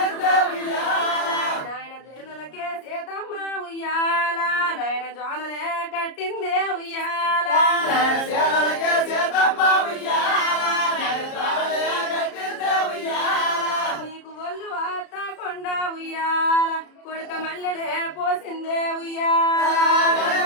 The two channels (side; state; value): right; late; 33 ms